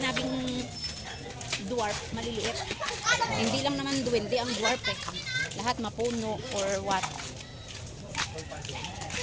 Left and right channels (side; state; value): both; identical; correlation 1.00